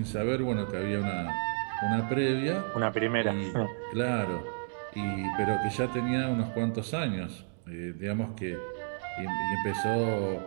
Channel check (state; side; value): silent; left; digital silence